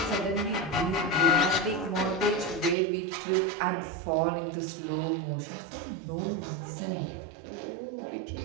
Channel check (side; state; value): left; drops out; at 2.8 s